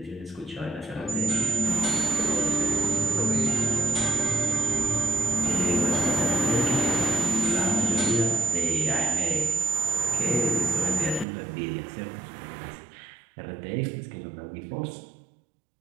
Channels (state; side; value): drops out; left; at 11.2 s